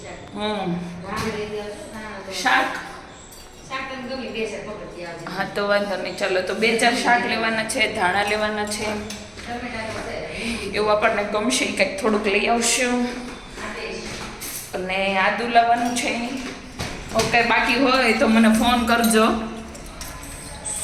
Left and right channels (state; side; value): identical; both; correlation 1.00